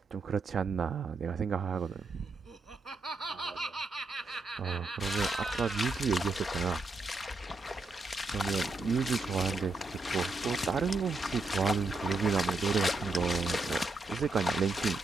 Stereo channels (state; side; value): quieter; left; 3.2 dB